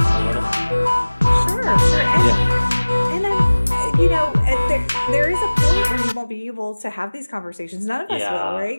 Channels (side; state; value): both; inverted; correlation -1.00